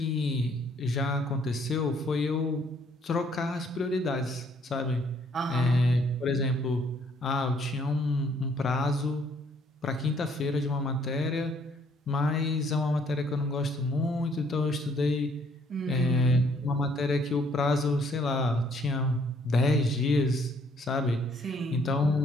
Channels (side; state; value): both; normal; correlation 0.65